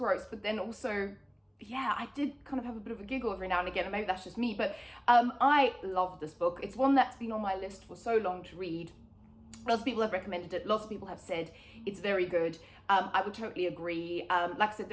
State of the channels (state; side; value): identical; both; correlation 1.00